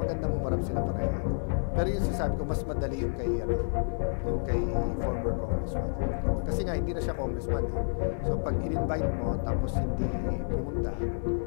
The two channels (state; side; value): silent; right; digital silence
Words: humarap sila pareho. Pero yung sasabi ko, mas madali yung kay former congressman. Kasi nga, hindi na siya congressman eh. So, pag in-invite mo, tapos hindi pumunta,